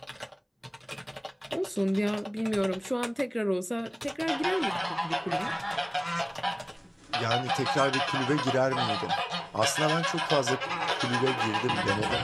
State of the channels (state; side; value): identical; both; correlation 1.00